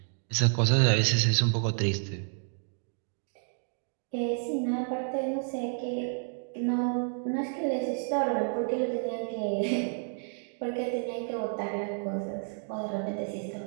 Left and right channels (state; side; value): silent; left; 58 dB below the other